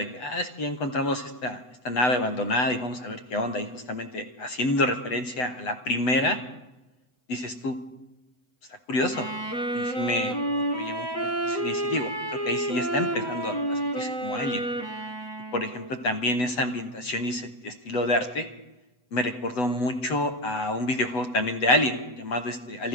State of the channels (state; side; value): late; right; 8.0 ms